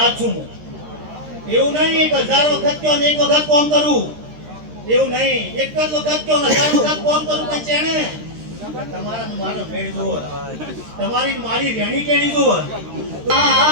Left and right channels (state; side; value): late; left; 13 ms